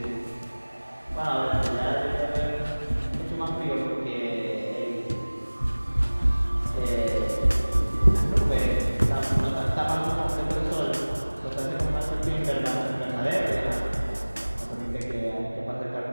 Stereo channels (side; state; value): both; inverted; correlation -1.00